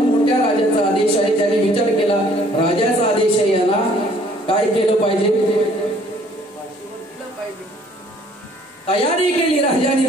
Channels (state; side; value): normal; both; correlation 0.59